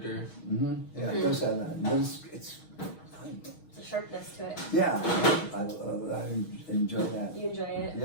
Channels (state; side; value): late; right; 6.3 ms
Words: Yeah, it does have that. But it's a sharpness to it. Yeah, I enjoy that. You enjoy it?